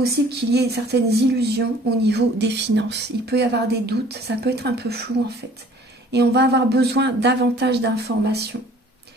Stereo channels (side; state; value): both; normal; correlation 0.53